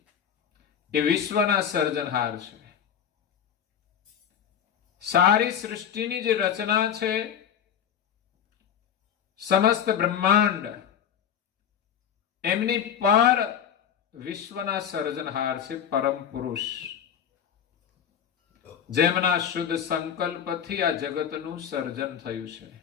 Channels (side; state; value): right; quieter; 8.7 dB